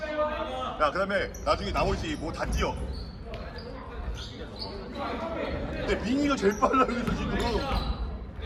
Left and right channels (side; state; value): both; identical; correlation 1.00